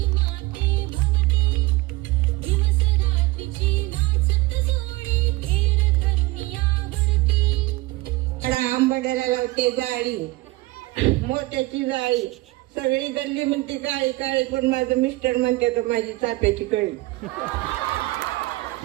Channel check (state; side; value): quieter; left; 20.4 dB